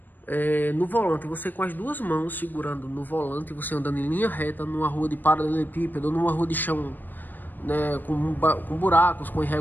no volante. Você com as duas mãos segurando no volante, você andando em linha reta numa rua de paralelepípedo ou numa rua de chão, né, com buracos, com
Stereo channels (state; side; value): late; right; 0.090 ms